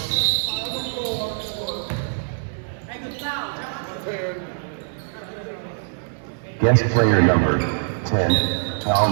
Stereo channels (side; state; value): left; silent; 63 dB below the other